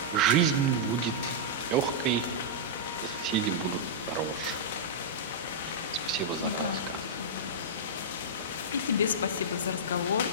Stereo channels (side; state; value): both; normal; correlation -0.11